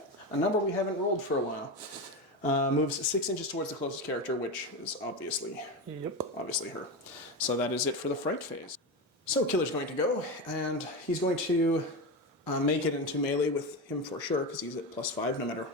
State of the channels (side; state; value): both; normal; correlation 0.18